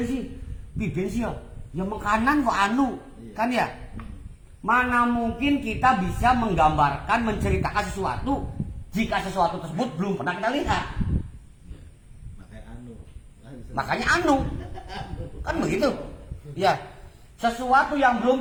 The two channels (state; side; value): identical; both; correlation 1.00